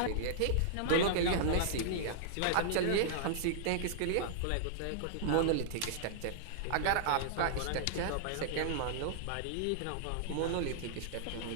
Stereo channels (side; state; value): both; different; correlation -0.02